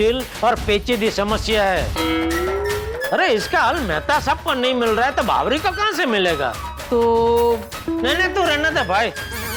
और पेचीदी समस्या है। अरे इसका हल मेहता साहब को नहीं मिल रहा है, तो बावरी को कहां से मिलेगा? तो नहीं, तू रहने दे भाई,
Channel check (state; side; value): identical; both; correlation 1.00